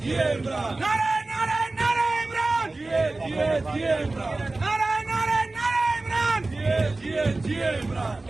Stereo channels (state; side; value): quieter; left; 3.1 dB